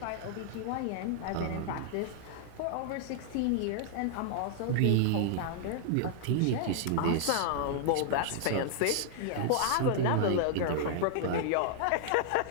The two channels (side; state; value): both; different; correlation -0.01